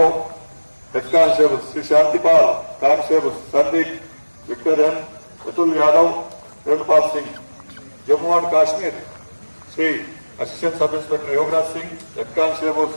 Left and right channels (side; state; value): both; inverted; correlation -1.00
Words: head constable Shri Shantipal constable Sandeep विक्टोरियन Atul Yadav Venupal Singh Jammu and Kashmir Shri assistant sub inspector Yograj Singh head constable